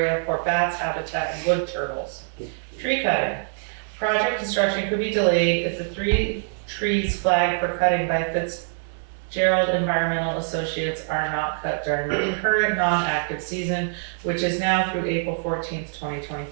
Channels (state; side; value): silent; left; digital silence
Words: for bats habitat and wood turtles. Tree cutting. Project construction could be delayed if the 3 trees flagged for cutting by Fitzgerald Environmental Associates are not cut during the current non-active season, which is now through April 14th,